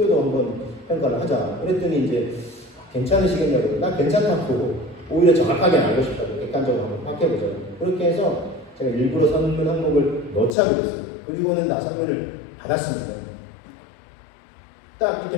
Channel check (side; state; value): right; drops out; at 10.6 s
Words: 한번 평가를 하자. 그랬더니 이제 괜찮으시겠냐고. 나 괜찮다고 오히려 정확하게 알고 싶다고 객관적으로 한번 파악해보자. 그렇게 해서 제가 일부러 설문 항목을 넣자고 했어요. 그리고는 나 설문을 받았습니다. 딱